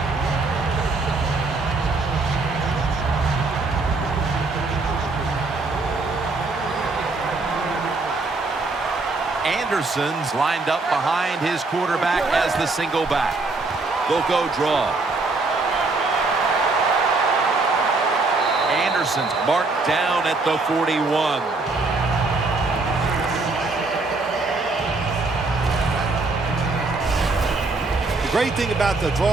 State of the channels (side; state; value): left; quieter; 3.6 dB